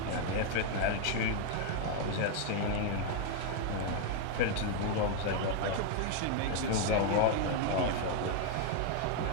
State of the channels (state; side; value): different; both; correlation 0.00